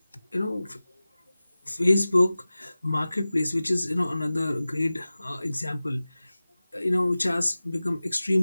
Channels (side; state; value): both; inverted; correlation -0.97